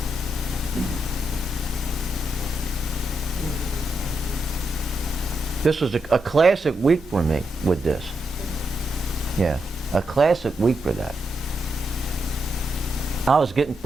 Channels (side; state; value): both; normal; correlation 0.83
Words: This was a classic week for me with this. Yeah, a classic week for that. I was getting